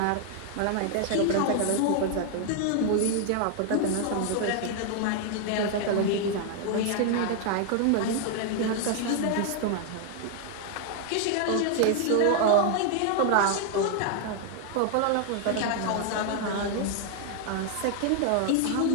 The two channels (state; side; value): different; both; correlation 0.00